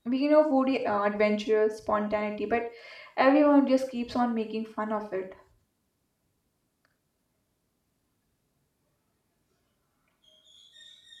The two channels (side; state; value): both; identical; correlation 1.00